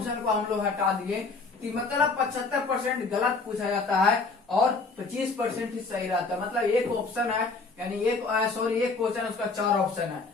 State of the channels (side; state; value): right; quieter; 4.0 dB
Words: को हम लोग हटा दिए, कि मतलब 75% गलत पूछा जाता है और 25% ही सही रहता है। मतलब एक ऑप्शन है, यानी एक क्वेश्चन है, उसका 4 ऑप्शन है,